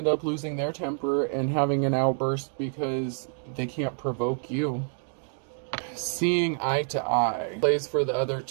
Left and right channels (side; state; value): left; silent; 60 dB below the other